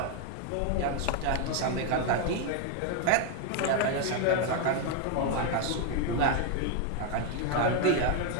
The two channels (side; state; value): both; different; correlation 0.01